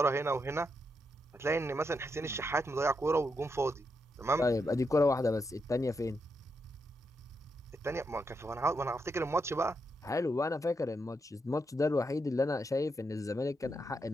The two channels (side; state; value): both; normal; correlation 0.82